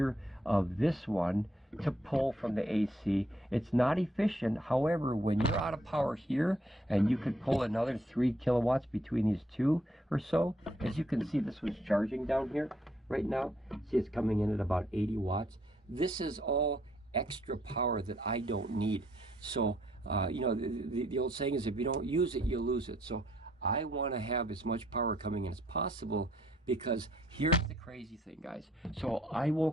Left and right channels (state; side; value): normal; both; correlation 0.69